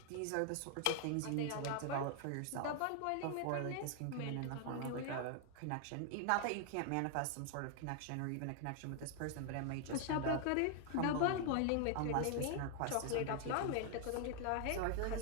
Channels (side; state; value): both; different; correlation 0.00